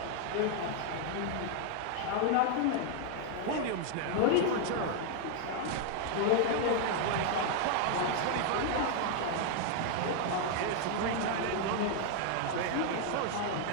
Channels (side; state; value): both; different; correlation 0.00